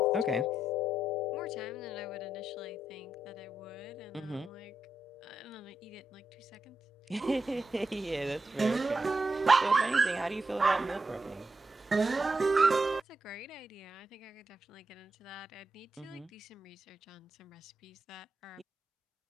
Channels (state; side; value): normal; both; correlation 0.85